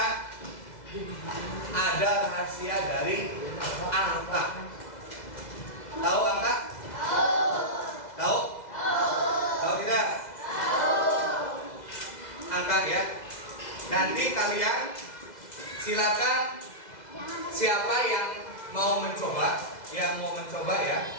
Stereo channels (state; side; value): late; right; 2.0 ms